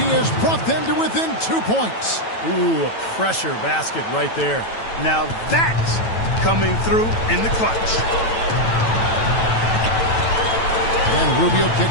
has brought them to within 2 points. Ooh, a pressure basket right there. Now that's coming through in the clutch. And Rubio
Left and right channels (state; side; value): late; right; 9.1 ms